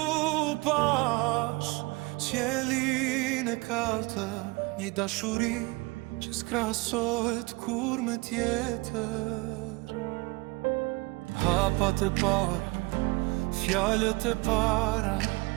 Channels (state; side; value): quieter; left; 24.5 dB